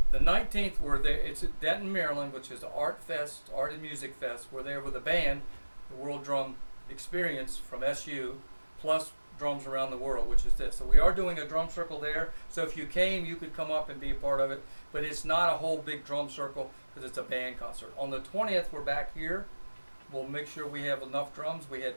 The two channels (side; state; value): both; inverted; correlation -1.00